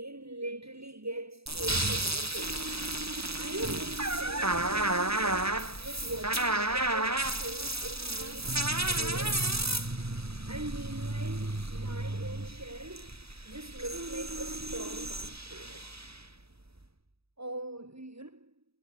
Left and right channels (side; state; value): left; late; 0.77 ms